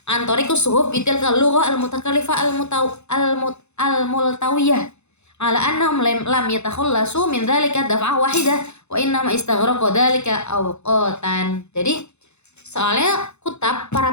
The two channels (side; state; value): right; late; 0.81 ms